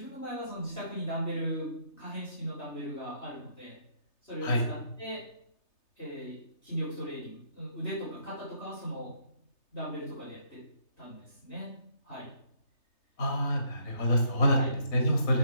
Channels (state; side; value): late; right; 3.3 ms